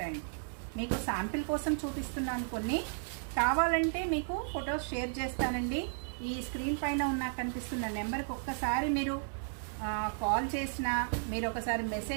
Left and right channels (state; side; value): silent; left; digital silence